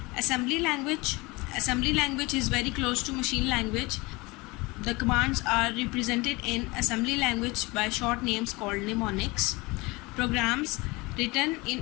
Assembly language. Assembly language is very close to machine language. The commands are represented in assembly language by short names called mnemonics. Programs written in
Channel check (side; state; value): right; quieter; 24.0 dB